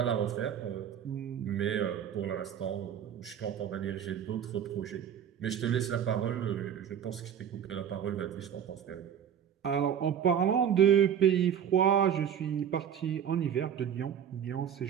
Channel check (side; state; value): left; quieter; 8.9 dB